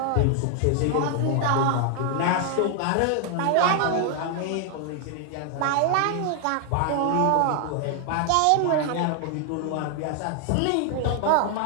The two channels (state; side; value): different; both; correlation 0.00